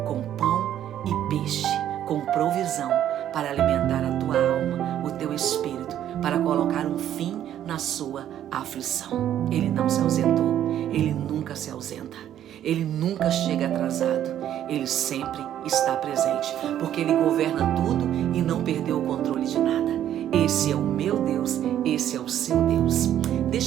com pão e peixe, com provisão para alimentar a tua alma, o teu espírito, para colocar um fim na sua aflição. Ele não se ausentou. Ele nunca se ausenta. Ele nunca chega atrasado. Ele sempre está presente, porque ele governa tudo e não perdeu o controle de nada. Esse é o meu Deus, esse é o seu Deus.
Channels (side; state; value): left; quieter; 11.1 dB